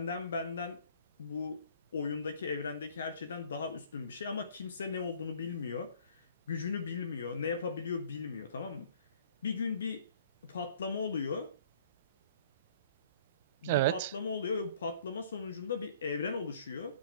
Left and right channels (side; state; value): both; inverted; correlation -0.54